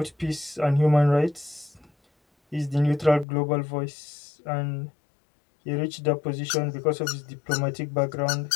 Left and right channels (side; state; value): right; drops out; at 3.2 s